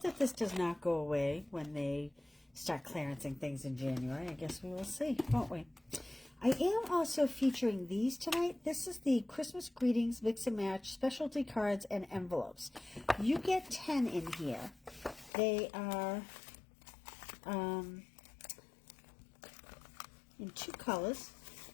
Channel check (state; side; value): drops out; right; at 15.3 s